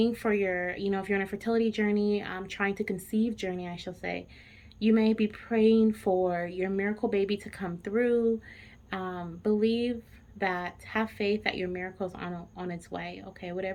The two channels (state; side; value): identical; both; correlation 1.00